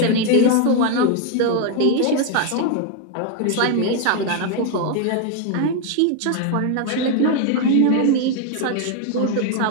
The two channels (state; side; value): different; both; correlation 0.01